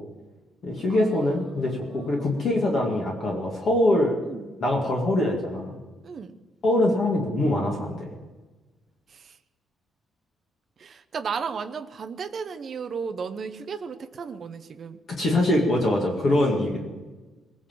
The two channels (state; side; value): normal; both; correlation 0.75